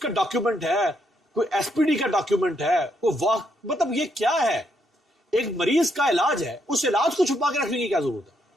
ڈاکیومنٹ ہے، کوئی ایس پی ڈی کا ڈاکیومنٹ ہے، مطلب یہ کیا ہے؟ ایک مریض کا علاج ہے، اس علاج کو چھپا کے رکھنے کی کیا ضرورت ہے؟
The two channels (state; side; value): normal; both; correlation 0.76